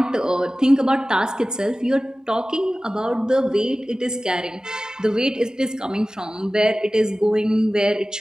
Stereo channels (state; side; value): normal; both; correlation 0.96